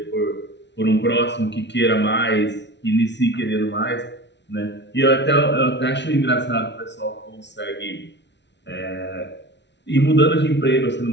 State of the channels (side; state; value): right; late; 0.51 ms